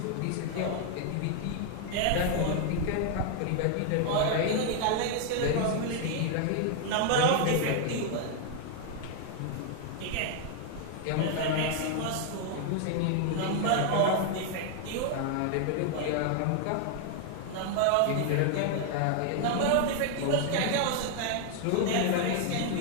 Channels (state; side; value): different; both; correlation 0.00